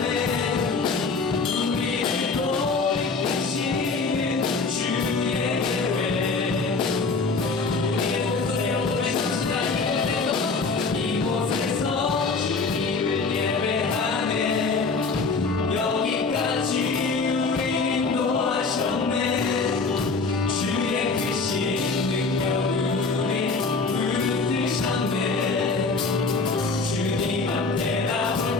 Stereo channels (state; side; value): quieter; right; 4.2 dB